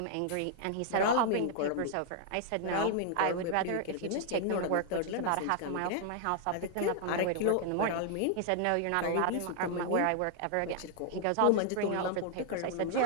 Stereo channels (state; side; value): different; both; correlation -0.01